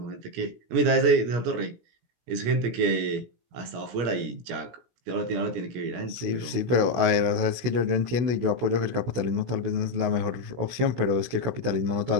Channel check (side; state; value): left; late; 16 ms